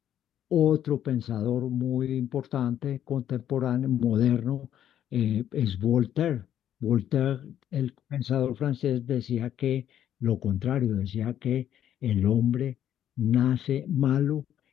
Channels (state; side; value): quieter; right; 10.7 dB